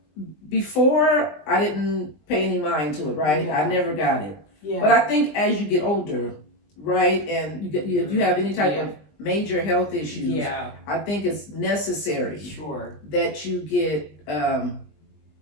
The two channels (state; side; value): late; right; 20 ms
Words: Before, I didn't pay any mind to it, right? I never got it. But I think as you get older, right, and if you have any type of major health issues, I think it's necessary that you get